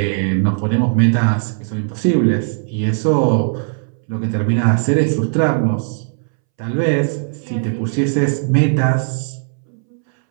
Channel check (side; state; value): left; silent; 66 dB below the other